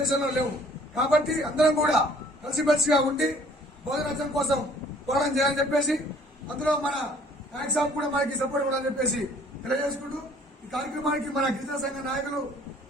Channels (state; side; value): normal; both; correlation 0.56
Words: దేశంలో లేవు. కాబట్టి అందరం కూడా కలిసిమెలిసిగా ఉండి భోజనం కోసం పోరాటం చేయాలని చెప్పేసి, అందులో మన నాయక్ సాబ్ కూడా మనకి సపోర్ట్ ఇవ్వాలని చెప్పేసి తెలియజేసుకుంటూ ఈ కార్యక్రమానికి మన గిరిజన సంఘ నాయకులు